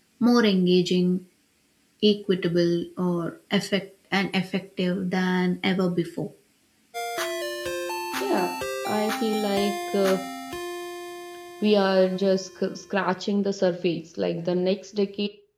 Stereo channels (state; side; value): identical; both; correlation 1.00